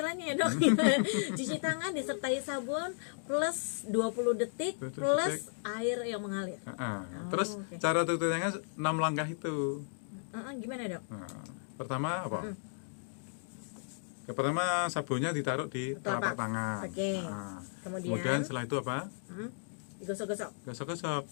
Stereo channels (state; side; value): silent; right; digital silence